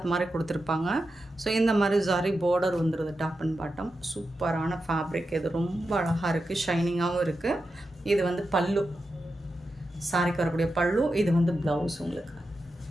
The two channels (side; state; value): both; normal; correlation 0.89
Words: மாதிரி கொடுத்துருப்பாங்க. ஸோ இந்த மாதிரி ஜரி பார்டர் வந்துடுது டாப் அண்ட் பாட்டம். சூப்பரான ஃபேப்ரிக். இது ரொம்ப அழகாக இருக்குது. ஷைனிங்காகவும் இருக்குது. இது வந்து பல்லு. சாரிக்கு வரக்கூடிய பல்லு. இது வந்து ப்ளவுஸ் உங்களுக்கு.